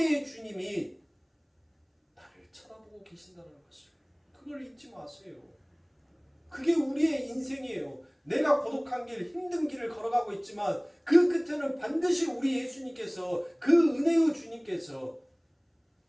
주님이 나를 쳐다보고 계신다는 것을, 그걸 잊지 마세요. 그게 우리의 인생이에요. 내가 고독한 길, 힘든 길을 걸어가고 있지만 그 끝에는 반드시 우리 예수님께서, 그 은혜의 주님께서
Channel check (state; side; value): identical; both; correlation 1.00